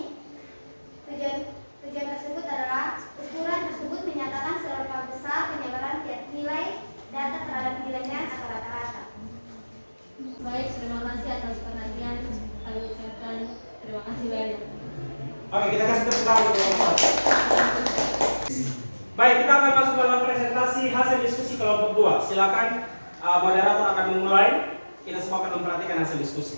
Tujuan tersebut adalah ukuran tersebut menyatakan seberapa besar penyebaran tiap nilai data terhadap nilainya atau rata-rata. Baik, terima kasih atas perhatian. Kami ucapkan terima kasih banyak. Oke, kita kasih tepuk tangan untuk kelompok 1. Baik, kita akan masuk dalam presentasi hasil diskusi kelompok 2. Silakan moderator akan memulai. Kita semua akan memperhatikan hasil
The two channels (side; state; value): both; inverted; correlation -1.00